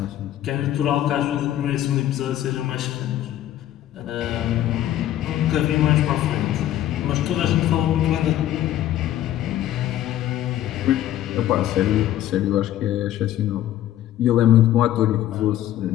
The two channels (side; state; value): right; quieter; 12.7 dB